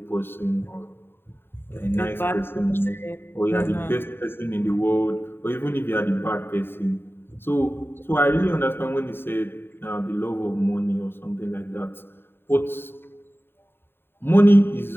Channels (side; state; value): right; late; 0.11 ms